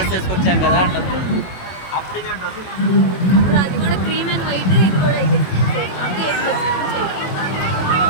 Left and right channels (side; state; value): right; late; 22 ms